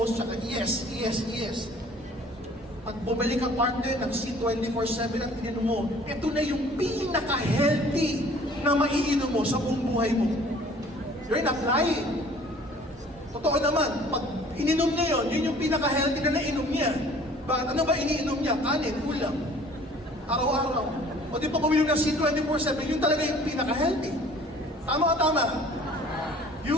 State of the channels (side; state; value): both; normal; correlation 0.52